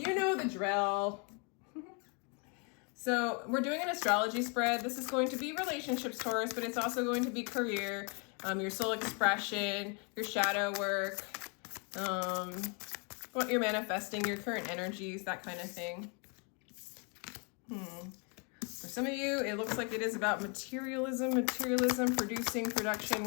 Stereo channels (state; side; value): quieter; right; 35.4 dB